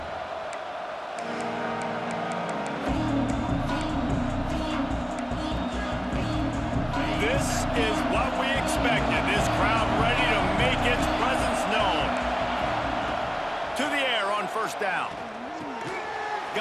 This is what we expected. This crowd ready to make its presence known. To the air on first down.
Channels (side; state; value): both; identical; correlation 1.00